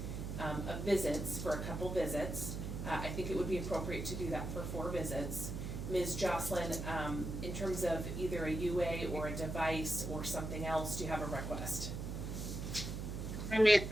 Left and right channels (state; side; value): noise; right; hum, 5 dB below the sound